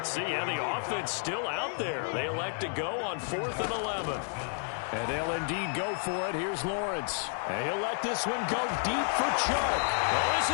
see. Yeah, the offense still out there. They elect to go on 4th and 11. And they'll indeed go for it. Here's Lawrence. And he'll let this one go deep for Chark. Oh, this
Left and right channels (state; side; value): silent; right; 57 dB below the other